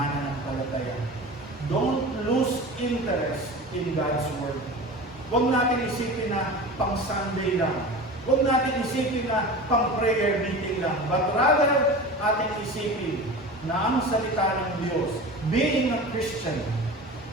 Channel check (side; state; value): both; normal; correlation 0.33